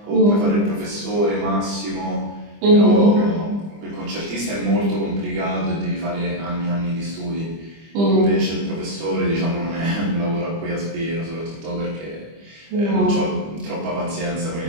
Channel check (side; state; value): left; late; 25 ms